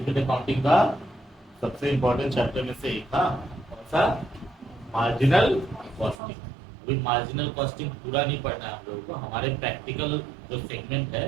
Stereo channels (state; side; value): drops out; left; at 6.2 s